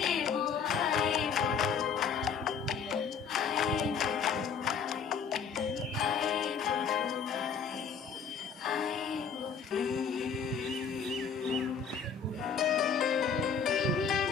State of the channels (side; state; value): right; quieter; 6.2 dB